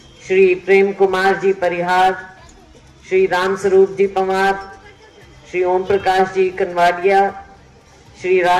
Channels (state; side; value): identical; both; correlation 1.00